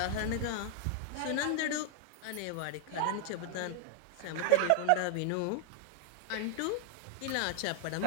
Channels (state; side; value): different; both; correlation 0.00